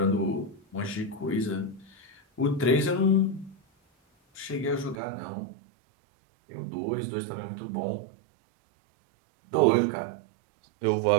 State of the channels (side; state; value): left; drops out; at 5.0 s